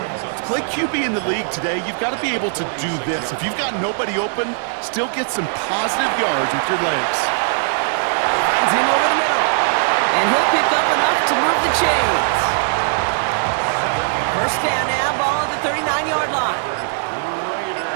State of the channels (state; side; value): silent; left; digital silence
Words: to play QB in the league today, you've got to be able to do this. If you've got nobody open, still get some positive yards with your legs. Finds him over the middle. And he'll pick up enough to move the chains. 1st down now, ball at the 39-yard line.